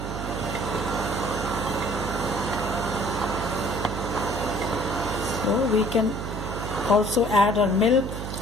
we can also add our milk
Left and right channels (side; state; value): right; noise; hum, 5 dB below the sound